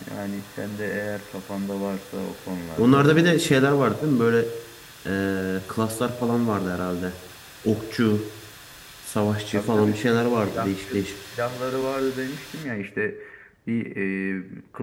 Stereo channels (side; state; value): both; identical; correlation 1.00